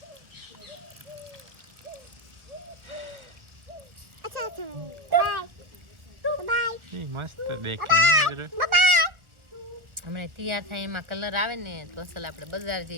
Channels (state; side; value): late; left; 1.5 ms